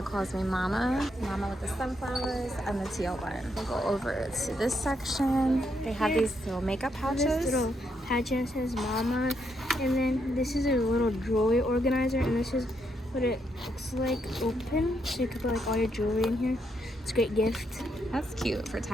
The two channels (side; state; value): both; normal; correlation 0.78